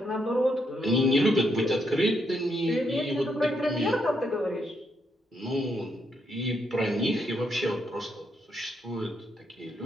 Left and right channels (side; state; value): both; normal; correlation 0.78